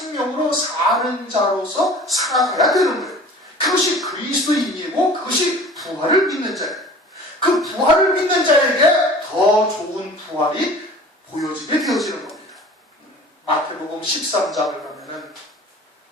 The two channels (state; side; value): normal; both; correlation 0.44